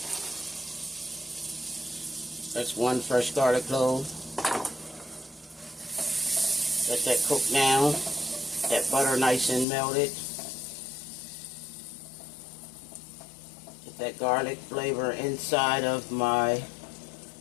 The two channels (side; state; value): right; drops out; at 9.7 s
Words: That's 1 fresh garlic clove. Let that cook down. That butter nice and melted. Get that garlic flavor inside of my